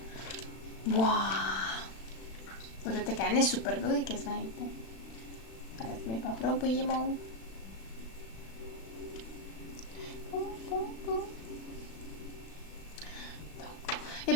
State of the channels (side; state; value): right; late; 36 ms